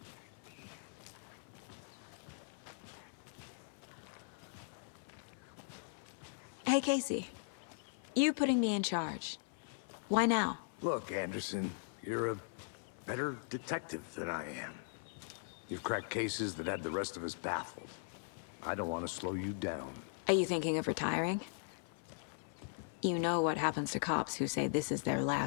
Hey, Casey. You putting me in charge. Why now? Look, Anderson, you're a better detective than I am. You've cracked cases that had the rest of us baffled. I don't want to slow you down. Are you thinking of retiring? You know what happens to cops who say this is their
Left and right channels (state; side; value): silent; right; 51 dB below the other